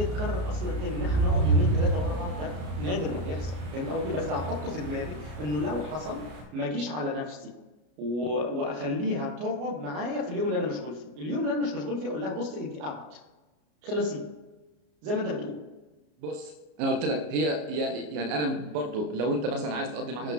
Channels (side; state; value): left; late; 33 ms